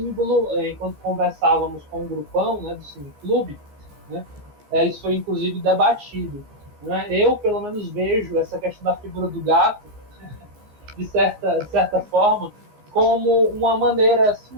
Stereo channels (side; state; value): left; late; 14 ms